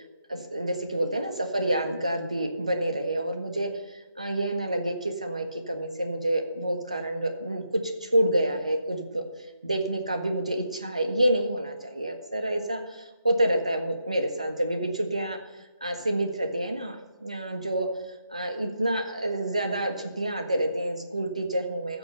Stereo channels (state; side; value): inverted; both; correlation -0.80